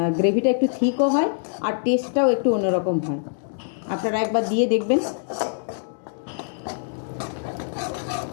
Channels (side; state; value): right; silent; digital silence